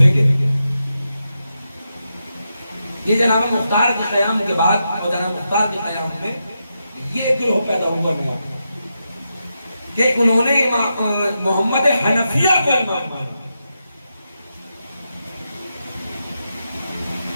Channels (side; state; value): both; inverted; correlation -0.86